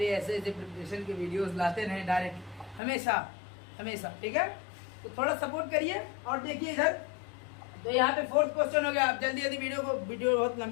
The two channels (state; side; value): drops out; right; at 2.8 s